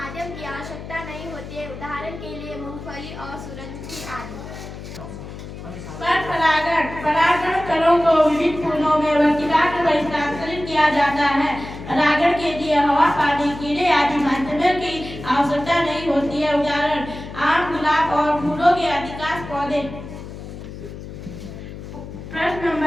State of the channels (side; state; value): left; noise; hum, 12 dB below the sound